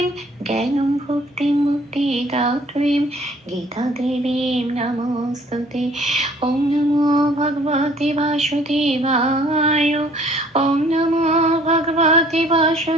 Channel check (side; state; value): both; normal; correlation 0.56